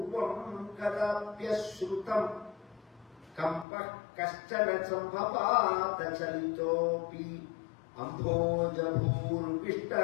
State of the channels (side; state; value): right; drops out; at 3.7 s